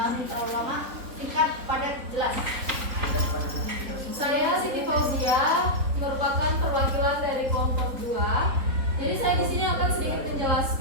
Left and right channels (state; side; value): late; left; 3.9 ms